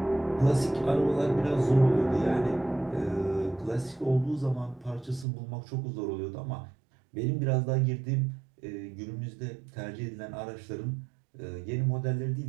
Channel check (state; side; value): drops out; left; at 5.2 s